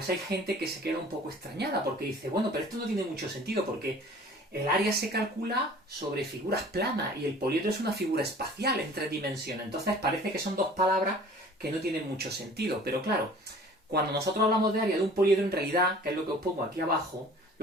hay gente que se queda un poco extrañada, porque dice, bueno, pero esto no tiene mucho sentido, porque el área se calcula sobre figuras planas y el poliedro es una figura espacial en 3 dimensiones. Entonces parece que son dos palabras que no tienen mucho sentido. Pero claro, cuando nosotros hablamos de área de un poliedro, en realidad, que es lo que os pongo aquí abajo,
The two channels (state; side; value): normal; both; correlation 0.48